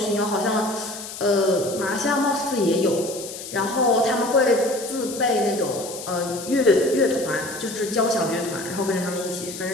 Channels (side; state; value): left; noise; hiss, 11 dB below the sound